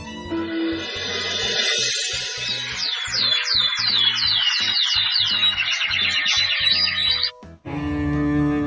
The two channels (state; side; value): identical; both; correlation 1.00